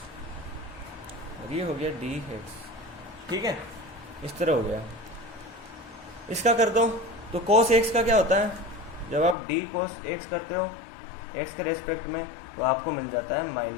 ये हो गया dx, ठीक है, इस तरह हो गया। इसका कर दो तो cos x का क्या होता है, जब आप d cos x करते हो x के रेस्पेक्ट में तो आपको मिल जाता है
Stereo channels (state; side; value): drops out; right; at 9.3 s